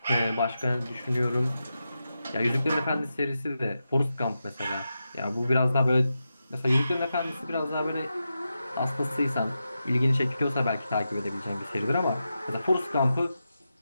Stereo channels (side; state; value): both; inverted; correlation -0.89